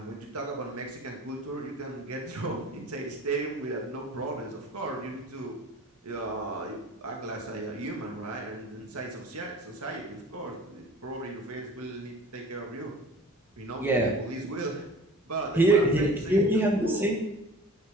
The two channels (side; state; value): both; normal; correlation 0.43